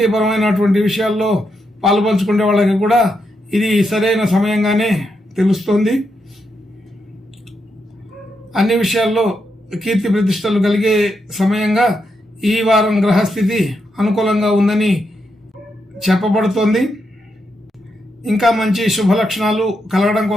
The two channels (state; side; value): normal; both; correlation 0.82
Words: విషయాల్లో పాలుపంచుకునే వాళ్ళకి కూడా ఇది సరైన సమయంగానే తెలుస్తుంది. అన్ని విషయాల్లో కీర్తి ప్రతిష్టలు కలిగే సమయంగా ఈ వారం గ్రహస్థితి అనుకూలంగా ఉందని చెప్పబడుతోంది. ఇంకా మంచి శుభ లక్షణాలు కలగడం